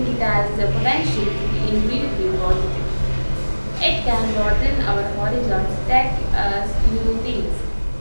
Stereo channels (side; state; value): both; inverted; correlation -1.00